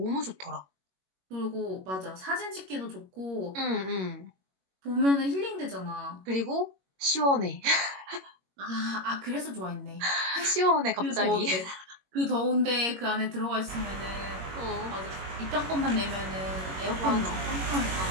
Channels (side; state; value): left; late; 21 ms